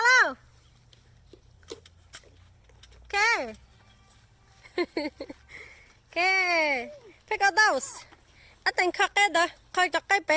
Okay. Okay. Pick out those. I think khắc cái đó, khơi cho cái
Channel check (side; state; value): both; identical; correlation 1.00